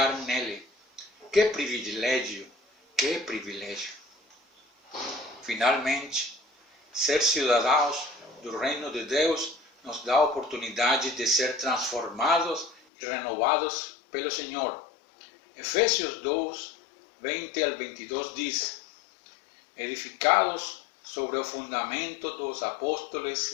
nele. Que privilégio, que privilégio! Finalmente, ser cidadãos do reino de Deus nos dá a oportunidade de ser transformados e renovados pelo Senhor. Efésios 2, 20 al 22 diz: edificados sobre o fundamento dos apóstolos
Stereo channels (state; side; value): drops out; right; at 12.8 s